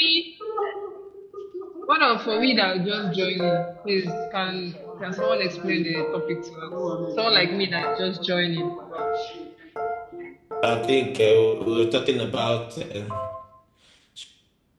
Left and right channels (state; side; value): identical; both; correlation 1.00